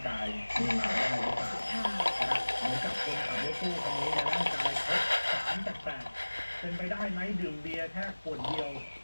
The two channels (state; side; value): inverted; both; correlation -1.00